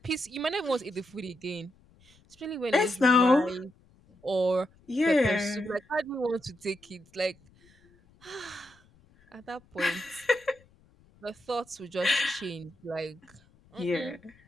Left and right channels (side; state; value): left; noise; rumble, 30 dB below the sound